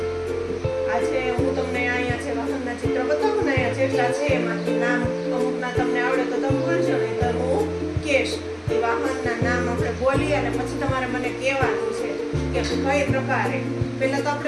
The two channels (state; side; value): identical; both; correlation 1.00